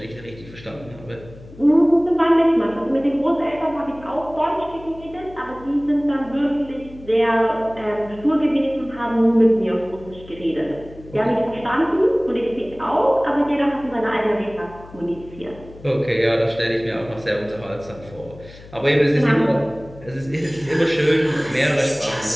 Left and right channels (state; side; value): noise; left; hum, 19 dB below the sound